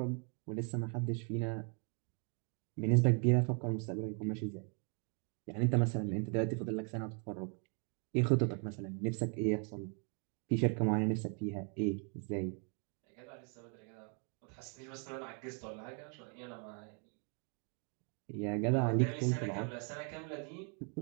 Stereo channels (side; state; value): left; quieter; 39.5 dB